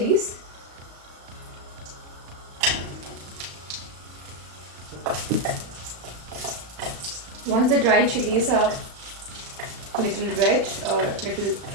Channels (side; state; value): left; late; 35 ms